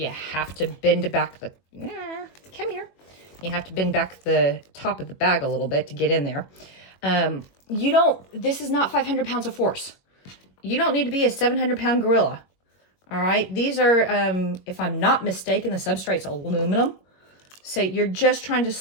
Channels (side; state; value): right; late; 21 ms